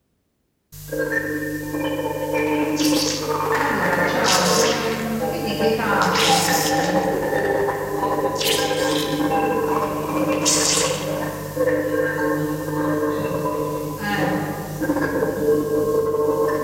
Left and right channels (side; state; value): both; identical; correlation 1.00